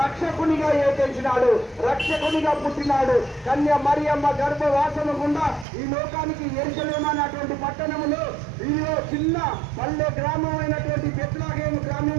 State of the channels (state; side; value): drops out; left; at 5.7 s